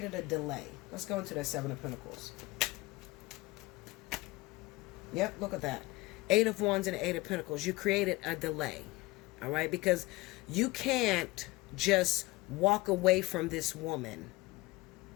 a delay. Let's go into that Seven of Pentacles. Yep, look at that. Eight of Wands and Eight of Pentacles. You created a delay. All right? Because you can't just walk away from this woman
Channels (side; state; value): right; quieter; 21.2 dB